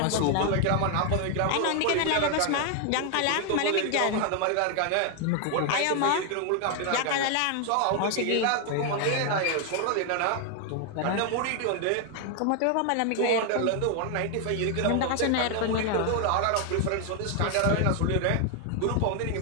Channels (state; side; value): different; both; correlation 0.00